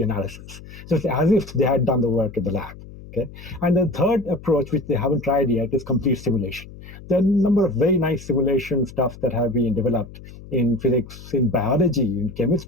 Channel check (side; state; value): left; noise; hum, 17 dB below the sound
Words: analysis. So it's as if they had done the work in the lab. Okay, and the third approach, which they haven't tried yet, is complete simulation. There are a number of very nice simulation stuff that have been developed in physics, in biology, in